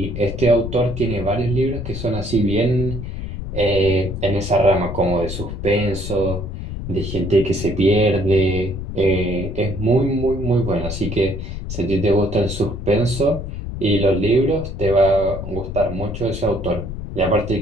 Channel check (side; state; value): left; noise; rumble, 7 dB below the sound